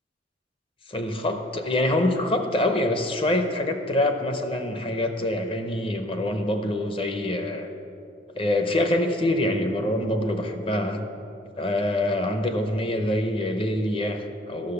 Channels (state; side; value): normal; both; correlation 0.55